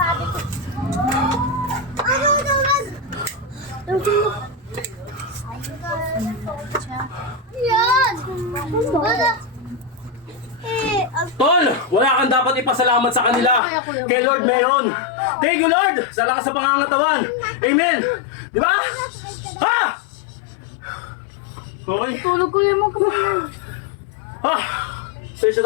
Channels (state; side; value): drops out; right; at 13.6 s